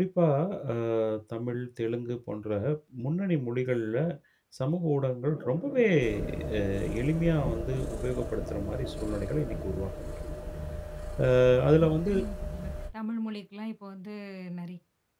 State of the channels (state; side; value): identical; both; correlation 1.00